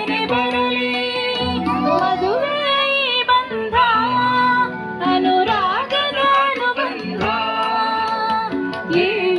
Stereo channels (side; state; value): both; identical; correlation 1.00